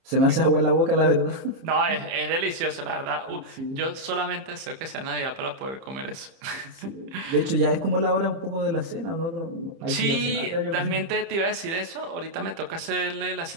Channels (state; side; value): late; left; 30 ms